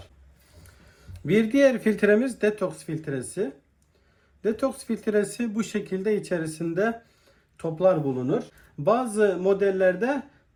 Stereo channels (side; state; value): both; identical; correlation 1.00